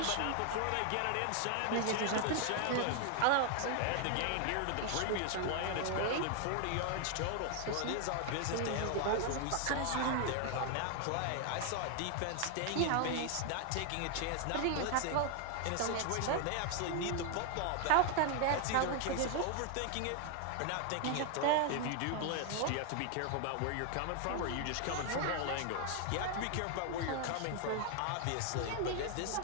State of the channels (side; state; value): both; different; correlation 0.01